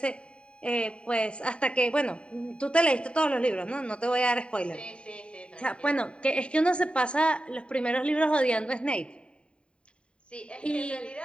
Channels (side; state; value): right; late; 0.054 ms